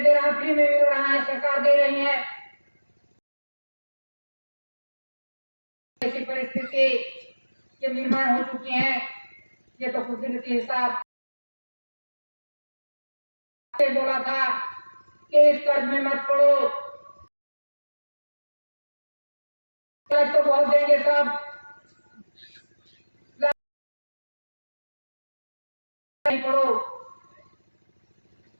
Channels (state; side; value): inverted; both; correlation -1.00